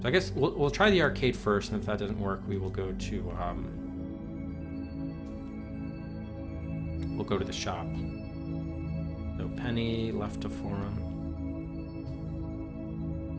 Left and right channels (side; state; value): both; identical; correlation 1.00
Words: So I guess we'll try the arcade first, and if that doesn't work, we will go to the shop. So Penny left to forum.